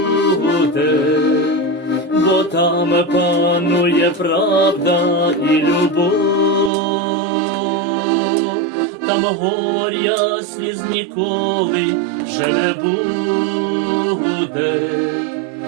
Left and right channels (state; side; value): drops out; left; at 6.7 s